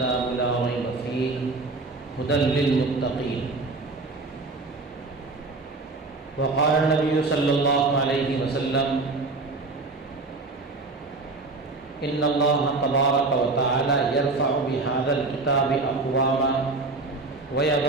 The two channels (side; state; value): left; quieter; 3.5 dB